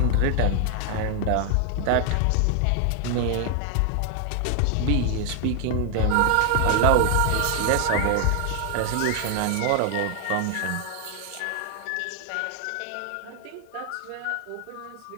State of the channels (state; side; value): different; both; correlation 0.00